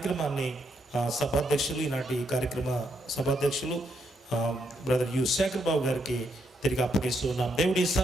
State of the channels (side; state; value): both; normal; correlation 0.77